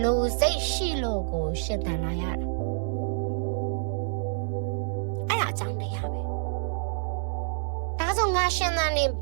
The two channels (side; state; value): left; silent; 60 dB below the other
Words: လို့စိတ်ရှိလို့ကိုရှင်သန်လာရတာအဲ့ဒါအကြောင်းတရားပဲဒါဆိုငါရှင်သန်နေ